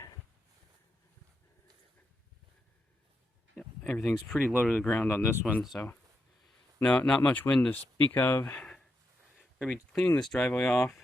Yep, everything's pretty low to the ground on this one, so no, not much wind to speak of. We're going to be cleaning this driveway off.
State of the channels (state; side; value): normal; both; correlation 0.84